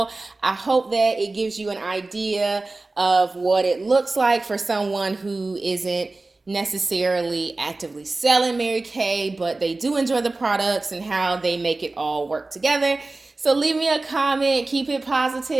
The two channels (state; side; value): quieter; left; 3.2 dB